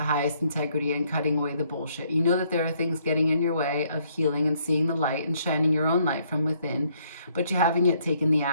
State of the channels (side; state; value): both; inverted; correlation -0.68